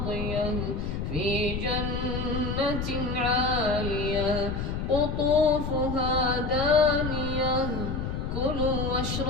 في جنة عالية قطوفها دانية كلوا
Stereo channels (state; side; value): noise; left; rumble, 3 dB below the sound